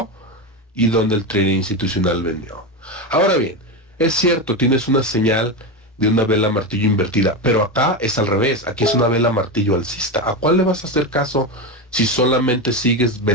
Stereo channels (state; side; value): normal; both; correlation 0.15